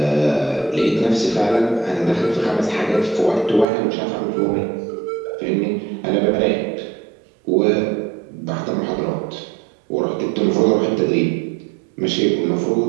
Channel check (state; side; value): drops out; left; at 3.7 s